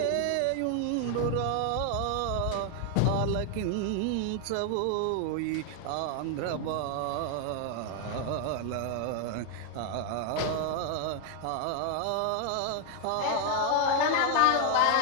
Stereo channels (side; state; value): both; different; correlation 0.00